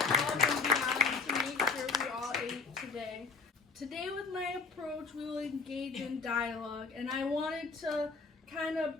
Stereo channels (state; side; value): quieter; right; 4.5 dB